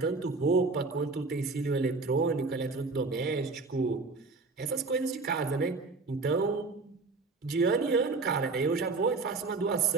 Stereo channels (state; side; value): quieter; left; 3.9 dB